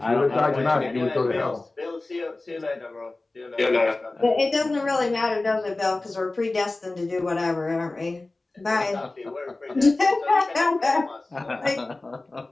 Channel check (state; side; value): quieter; right; 3.1 dB